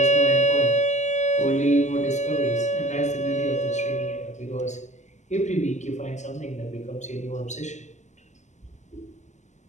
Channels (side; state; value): right; late; 0.34 ms